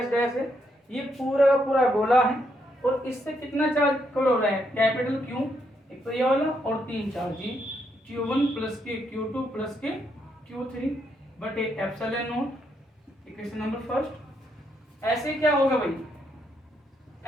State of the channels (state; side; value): normal; both; correlation 0.77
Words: डैश है, ये पूरा का पूरा गोला है और इससे कितना चार्ज कवर हो रहा है? कैपिटल क्यू, एक तो ये वाला, और 3 चार्ज जी, Q1 प्लस के Q2 प्लस के Q3 बटे epsilon not. Equation number first. ऐसे क्या होगा भाई?